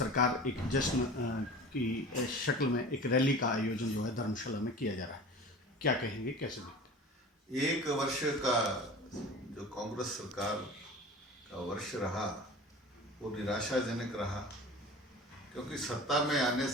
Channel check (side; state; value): both; normal; correlation 0.37